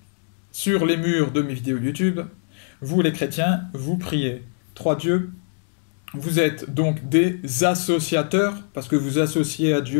sur les murs de mes vidéos YouTube. Vous les chrétiens, vous priez trois dieux. Vous êtes donc des associateurs, parce que vous associez à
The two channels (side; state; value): right; silent; digital silence